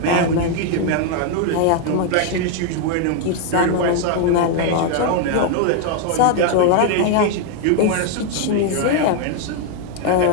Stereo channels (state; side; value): different; both; correlation 0.00